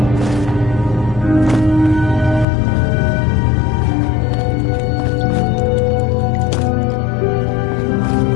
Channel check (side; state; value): right; drops out; at 2.5 s